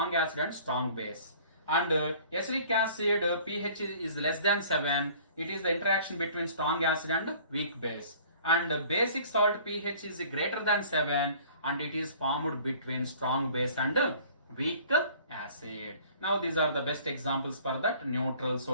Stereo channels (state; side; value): inverted; both; correlation -0.51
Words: acid and strong base. And acidic acid pH is less than 7. It is the interaction between strong acid and weak base. And basic salt pH is greater than 7 and it is formed between strong base and weak acid. Now these are the best examples for that: neutral